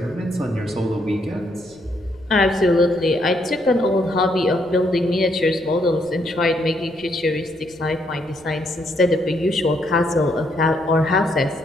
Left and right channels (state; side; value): noise; left; rumble, 28 dB below the sound